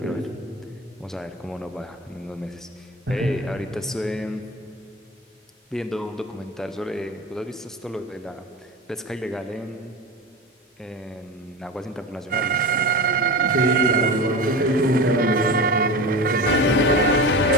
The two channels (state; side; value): normal; both; correlation 0.28